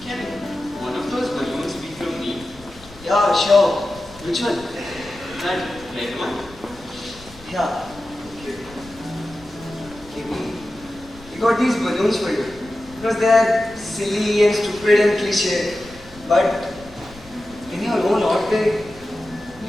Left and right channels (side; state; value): left; noise; rumble, 21 dB below the sound